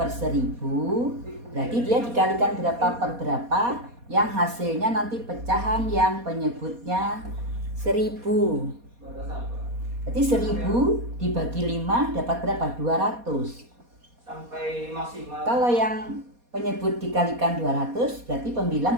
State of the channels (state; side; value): late; left; 4.2 ms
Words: 1000, Berarti dia dikalikan berapa per berapa, yang hasilnya nanti pecahan yang penyebutnya 1000. Berarti 1000 dibagi 5 dapat berapa? 200. Sampai maksimal. Kalau yang penyebut dikalikan 200, berarti